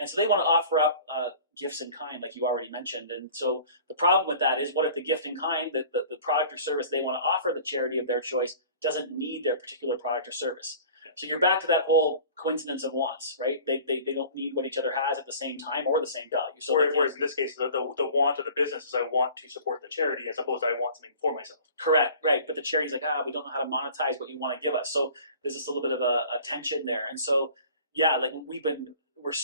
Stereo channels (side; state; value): both; inverted; correlation -0.45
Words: so they want to offer up gifts in kind, like you already mentioned. And so the problem with that is, what if the gift in kind, the product or service they want to offer the charity of their choice, doesn't need their particular product or service? Yeah. So you're back to that whole coincidence of wants, right? They don't need what each other has at the same time or the same value. So whereas in this case, the want of the business is I want to support the charity, as opposed to I want something for myself. Correct, right. But the charity's like, we don't know how to monetize what you want to give us. So there's just a little bit of a tension there. And so, yeah, like we're